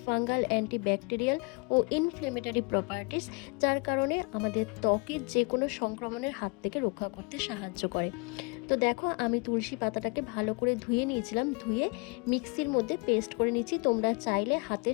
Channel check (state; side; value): quieter; right; 30.8 dB